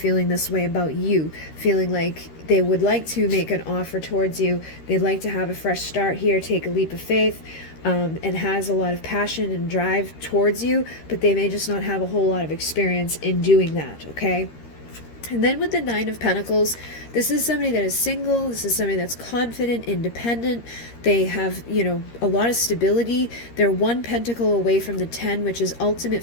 this way about you, feeling like they would like to make an offer towards you. They'd like to have a fresh start here, take a leap of faith, and has a lot of passion and drive towards you, but they may just not have a whole lot of experience in doing that, okay? And then with the Nine of Pentacles, this is somebody that is single. This is somebody that's confident, independent. They have, a lot of stability. They're 1 pentacle away from the 10, which is ultimate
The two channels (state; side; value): late; right; 13 ms